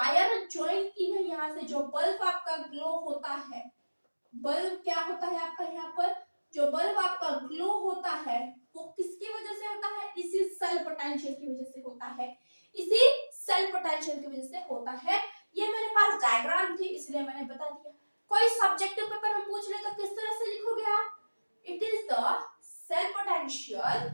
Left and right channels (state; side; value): inverted; both; correlation -1.00